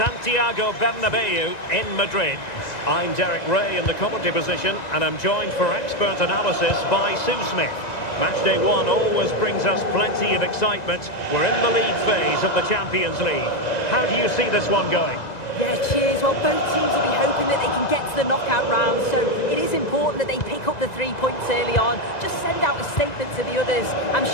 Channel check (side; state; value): right; late; 1.9 ms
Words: Bernabeu in Madrid. I'm Derek Ray in the commentary position, and I'm joined for expert analysis by Sue Smith. Match day one always brings us plenty of excitement. We're in the league phase of the Champions League. How do you see this one going? Yeah, cheers. Well, both teams will be hoping that they can get to the knockout round, so it is important that they pick up the 3 points early on. Just send out a statement to the others. I'm